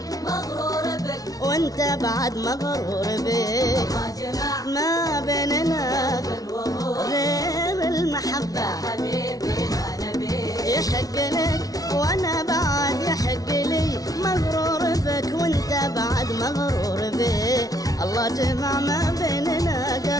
مغرور بك وانت بعد مغرور بي. ما جمع ما بيننا قلب وروح غير المحبة يا حبيبي ما نبي. يحق لك وانا بعد يحق لي مغرور بك وانت بعد مغرور بي. الله جمع ما بيننا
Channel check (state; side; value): late; right; 0.18 ms